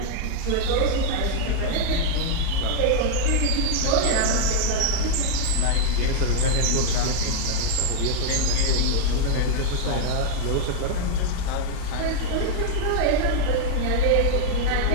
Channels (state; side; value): different; both; correlation 0.00